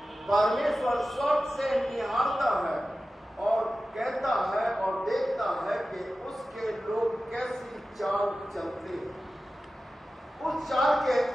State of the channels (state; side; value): normal; both; correlation 0.94